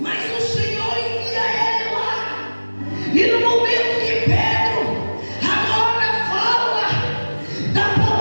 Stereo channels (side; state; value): both; inverted; correlation -1.00